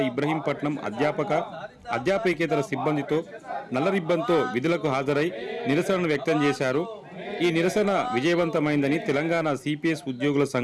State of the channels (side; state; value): both; identical; correlation 1.00